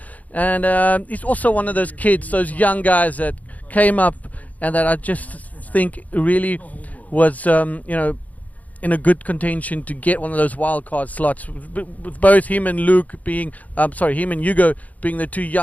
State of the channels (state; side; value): late; right; 0.075 ms